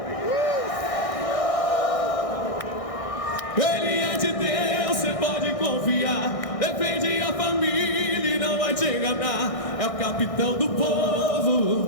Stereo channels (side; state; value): right; late; 1.6 ms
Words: Ele é de Deus, você pode confiar. Defende a família e não vai te enganar. É o capitão do